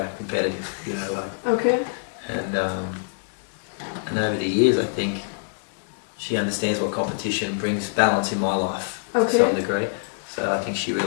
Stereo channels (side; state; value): right; silent; digital silence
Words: competitive. Okay. And over the years, I think she understands what competition brings balance in my life to some degree. So I think she